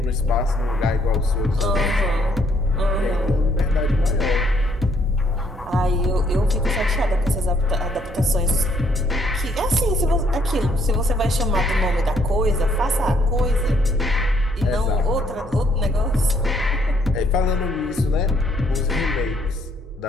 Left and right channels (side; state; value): both; normal; correlation 0.68